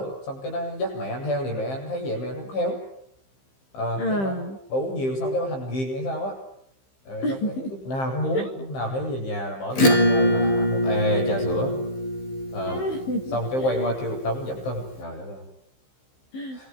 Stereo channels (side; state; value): right; late; 15 ms